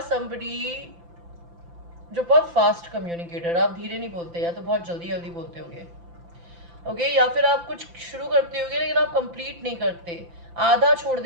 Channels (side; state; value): left; late; 5.9 ms